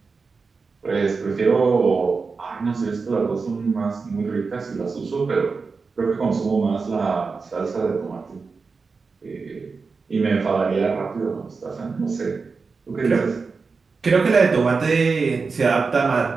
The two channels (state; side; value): quieter; left; 4.6 dB